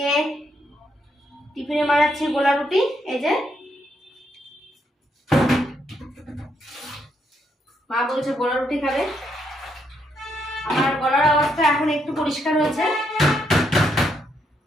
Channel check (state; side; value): normal; both; correlation 0.77